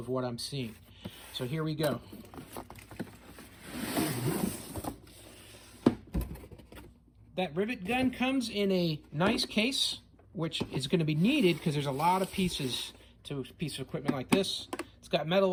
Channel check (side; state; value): both; identical; correlation 1.00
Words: what I'm seeing. So here we go. That rivet gun comes in a nice case, which is going to be needed because there's a lot of pieces to a piece of equipment like this. It's got metal